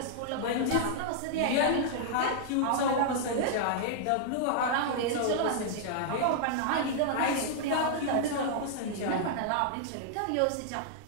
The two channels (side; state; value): both; different; correlation -0.01